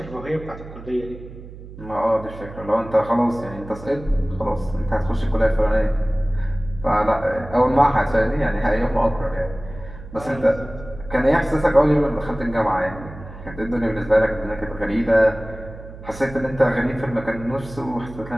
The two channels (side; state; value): right; noise; hum, 15 dB below the sound